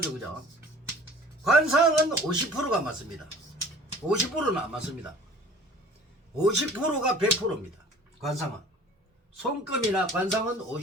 그죠? 관상은 50%가 맞습니다. 50%는 안 맞습니다. 50%가 100%입니다. 관상은 손금이나 관상은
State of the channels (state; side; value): normal; both; correlation 0.48